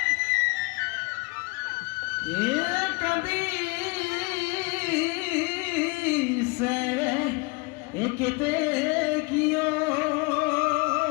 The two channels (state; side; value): quieter; right; 28.7 dB